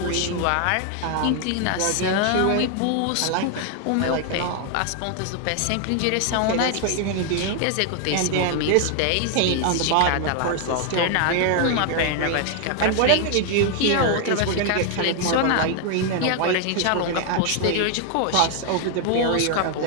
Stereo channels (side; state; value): both; different; correlation 0.00